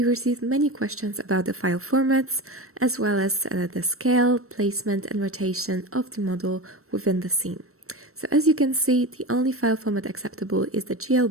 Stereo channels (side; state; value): left; late; 0.63 ms